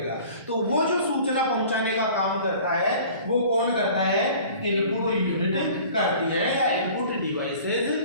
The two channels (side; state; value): both; inverted; correlation -0.47